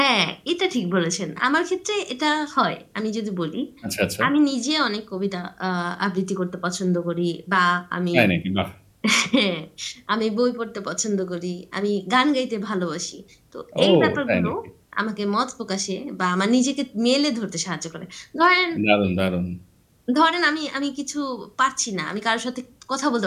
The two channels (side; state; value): both; identical; correlation 1.00